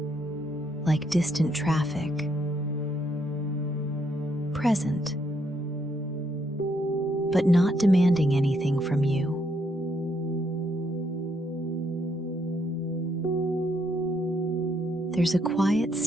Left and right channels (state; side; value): normal; both; correlation 0.74